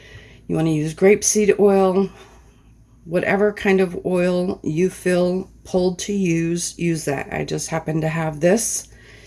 you want to use grapeseed oil, whatever kind of oil you feel pulled to use that. I just happen to have this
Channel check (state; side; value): identical; both; correlation 1.00